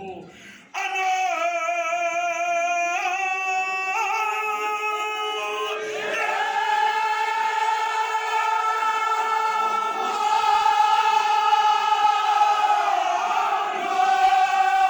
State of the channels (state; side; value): identical; both; correlation 1.00